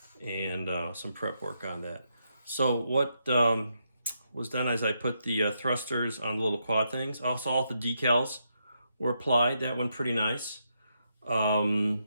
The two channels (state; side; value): inverted; both; correlation -0.81